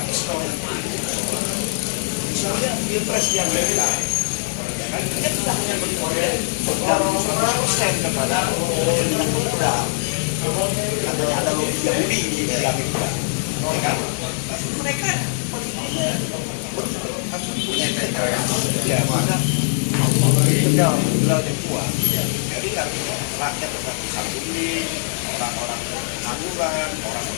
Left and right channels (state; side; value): silent; right; digital silence